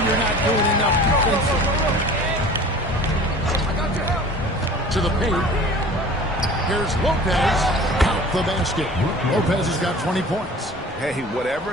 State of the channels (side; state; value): both; normal; correlation 0.43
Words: you're not doing enough defensively. To the paint. Here's Lopez. Count the basket. Lopez has got 20 points. Hey, whatever